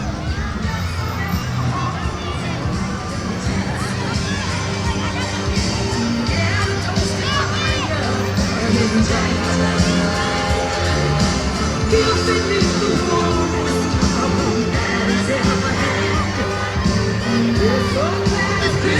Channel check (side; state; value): both; identical; correlation 1.00